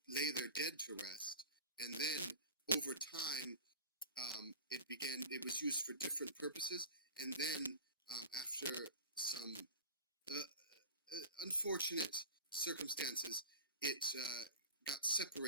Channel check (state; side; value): inverted; both; correlation -0.34